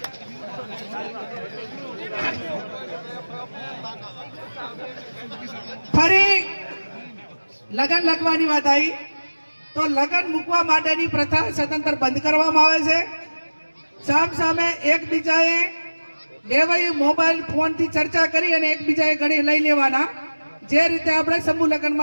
ફરી લગ્ન લખવાની વાત આવી તો લગ્ન મૂકવા માટેની પ્રથા સદંતર બંધ કરવામાં આવે છે. સામ સામે એકબીજાએ બેવાઈ મોબાઈલ ફોન થી ચર્ચા કરી અને એકબીજાએ ઘડી લઈ લેવાના. જે રીતે આપણે સમૂહ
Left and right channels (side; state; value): both; inverted; correlation -1.00